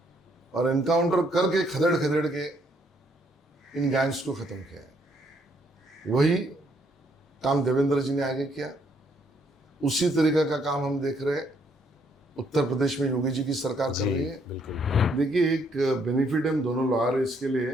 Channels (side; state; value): both; normal; correlation 0.70